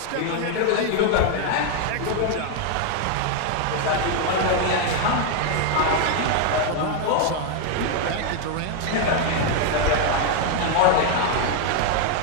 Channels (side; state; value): both; different; correlation 0.00